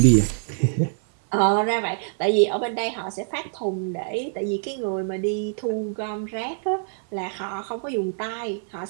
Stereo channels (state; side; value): silent; left; 57 dB below the other